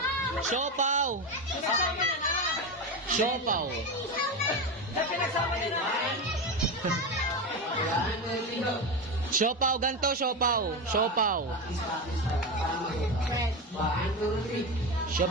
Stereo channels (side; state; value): both; normal; correlation 0.18